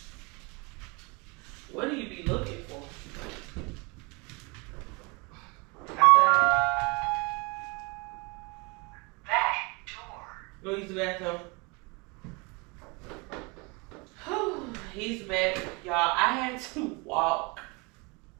What do you be looking for? Outside. Back door. Go use the bathroom. Whew, he's back. Y'all, I had to walk.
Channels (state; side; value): quieter; left; 28.8 dB